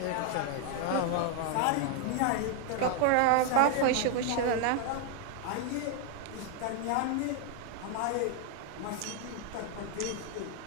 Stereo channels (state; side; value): different; both; correlation 0.00